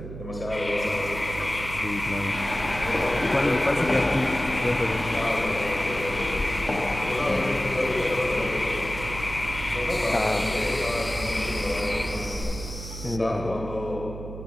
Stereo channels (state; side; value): noise; right; hum, 10 dB below the sound